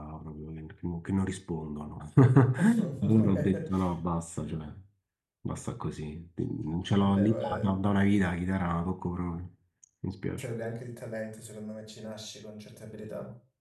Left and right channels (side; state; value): both; identical; correlation 1.00